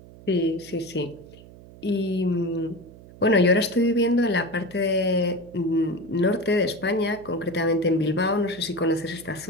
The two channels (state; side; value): noise; right; hum, 20 dB below the sound